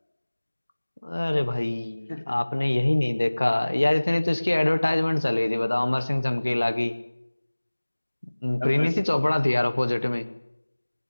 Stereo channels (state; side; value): inverted; both; correlation -1.00